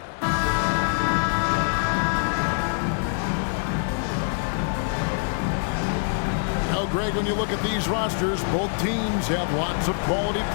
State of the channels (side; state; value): right; silent; digital silence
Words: Greg, when you look at these rosters, both teams have lots of quality